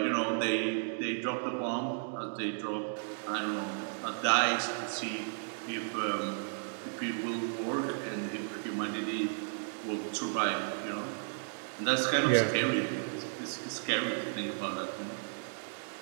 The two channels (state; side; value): silent; left; digital silence